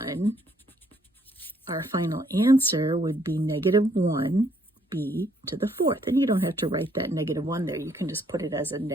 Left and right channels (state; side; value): normal; both; correlation 0.68